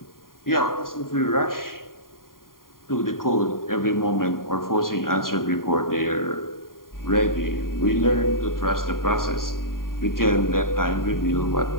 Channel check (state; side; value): late; right; 0.91 ms